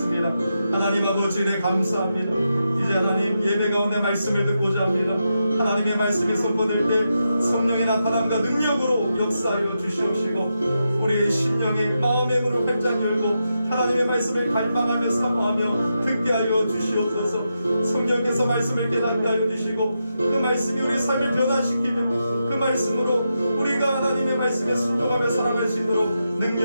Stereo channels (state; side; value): inverted; both; correlation -0.86